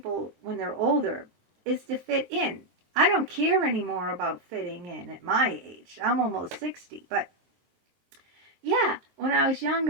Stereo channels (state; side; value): late; left; 23 ms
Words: when they're older, is to fit in. I don't care anymore about fitting in at my age. I'm almost 60. But yeah, when I was